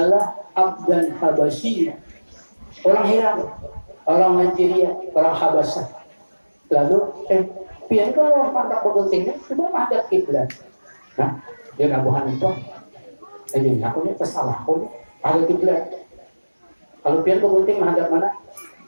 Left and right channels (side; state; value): both; inverted; correlation -1.00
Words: Abdan Habasyi. Orang Iran, orang Nigeria, orang Habasah. Lalu, pian kalau pandang guntingnya, coba menghadap kiblat. Nah, dia Abu Hanifah. Ini aku ini kesalah aku ini. Ada kiblat. Kalau pian gunting menghadap mana?